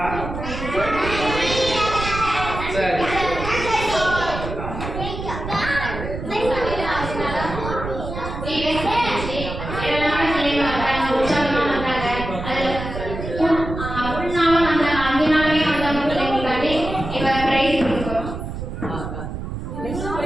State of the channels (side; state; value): right; noise; rumble, 7 dB below the sound